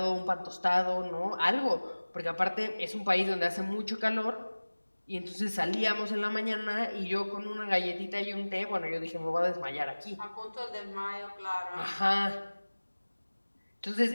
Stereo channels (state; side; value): inverted; both; correlation -1.00